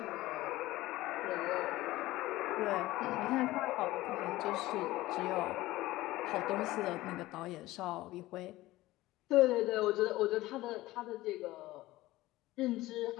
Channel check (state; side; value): quieter; right; 17.6 dB